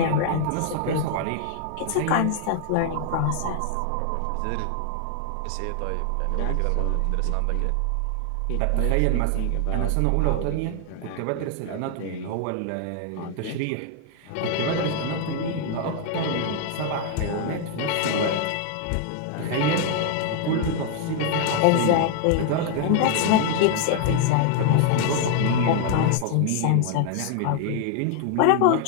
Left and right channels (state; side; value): different; both; correlation 0.00